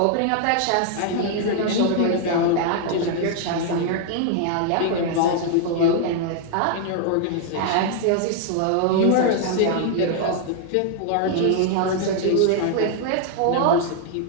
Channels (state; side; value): different; both; correlation 0.00